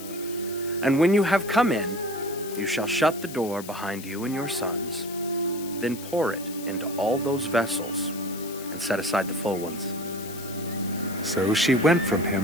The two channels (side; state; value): left; noise; hiss, 14 dB below the sound